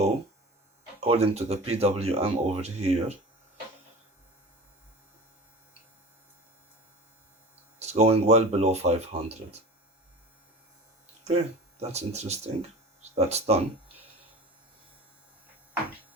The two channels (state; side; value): normal; both; correlation 0.36